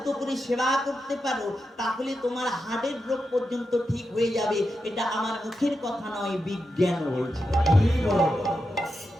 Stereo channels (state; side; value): normal; both; correlation 0.88